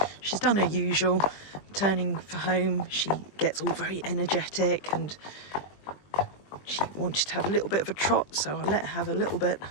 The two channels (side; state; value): right; late; 20 ms